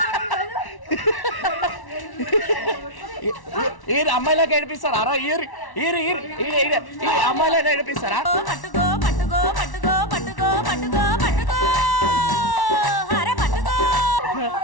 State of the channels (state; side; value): late; right; 1.1 ms